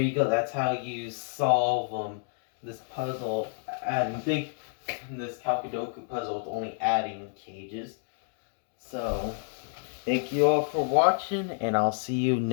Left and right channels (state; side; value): silent; right; 58 dB below the other